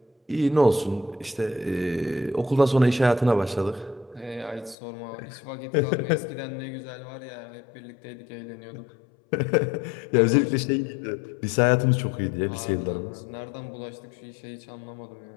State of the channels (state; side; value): drops out; right; at 4.8 s